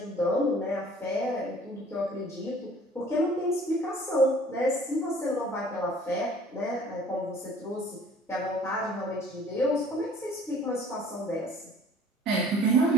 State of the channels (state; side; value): normal; both; correlation 0.51